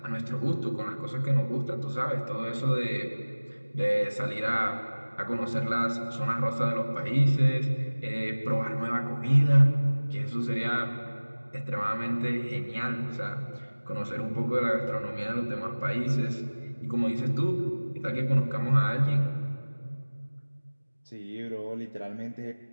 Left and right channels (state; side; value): inverted; both; correlation -1.00